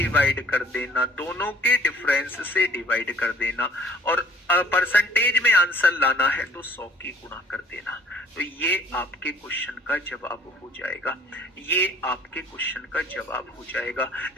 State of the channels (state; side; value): normal; both; correlation 0.54